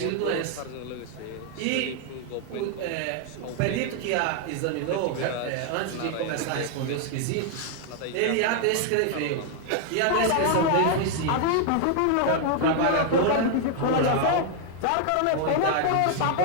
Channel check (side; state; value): both; different; correlation 0.00